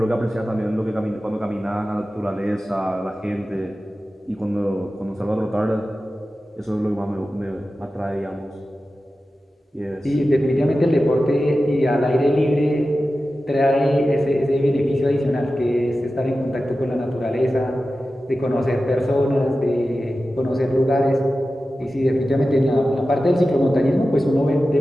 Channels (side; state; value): both; normal; correlation 0.94